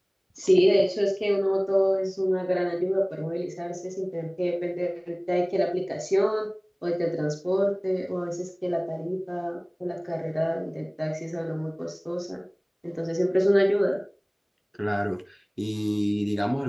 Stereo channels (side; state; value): both; identical; correlation 1.00